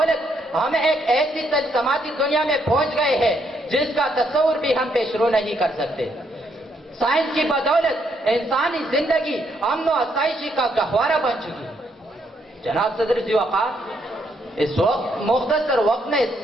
ہم ایک ایسی تجسماتی دنیا میں پہنچ گئے ہیں جس کا تصور بھی ہم پیش رو نہیں کر سکتے۔ سائنس کی بدولت انسانی زندگی امن و آسائشی کا گہوارہ بن چکی ہے۔ جناب صدر ذی وقار، اس وقت مختصر وقت میں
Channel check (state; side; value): normal; both; correlation 0.74